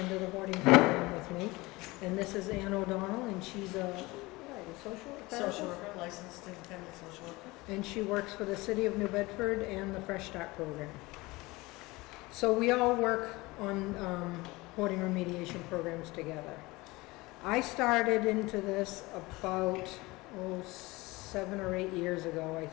the hoarding program with me. And this is Ann O'Donnell, and she's a social therapist? Social worker, licensed independent social worker. And she works for the city of New Bedford and the Fresh Start program. So we all work on hoarding remediation programs together. I started into this about 7 or 8 years ago, I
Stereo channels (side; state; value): right; quieter; 21.9 dB